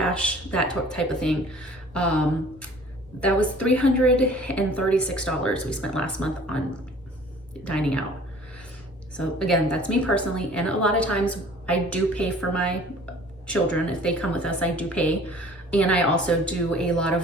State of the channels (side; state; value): both; normal; correlation 0.50